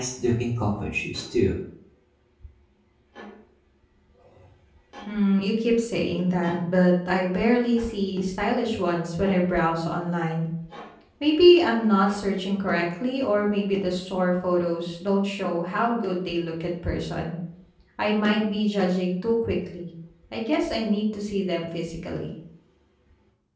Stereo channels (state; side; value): identical; both; correlation 1.00